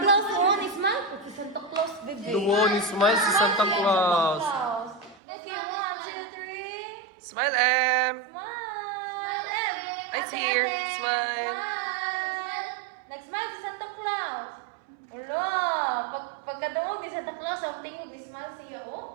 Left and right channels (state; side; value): drops out; left; at 5.2 s